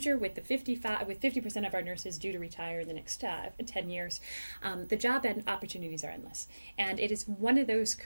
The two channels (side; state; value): both; inverted; correlation -1.00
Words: with 50% of our nurses due to retire in the next 10 years, the job and opportunities are endless. And it is one of those